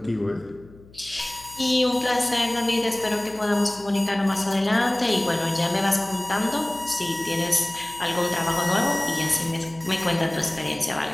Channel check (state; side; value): noise; left; hum, 23 dB below the sound